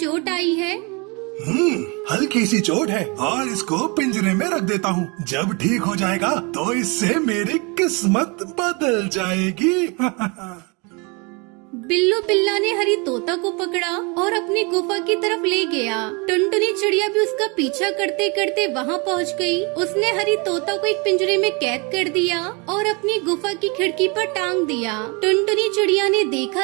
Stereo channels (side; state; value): left; quieter; 30.3 dB